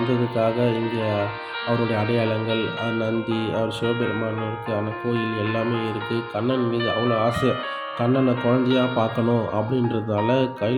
இங்கே அவருடைய அடையாளங்கள், நந்தி, அவர் சிவபெருமானுக்கான கோயில் எல்லாமே இருக்குது. கண்ணன் மீது அவ்வளோ ஆசை. கண்ணனை குழந்தையா பார்க்கணும் அப்படின்றதால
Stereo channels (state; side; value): identical; both; correlation 1.00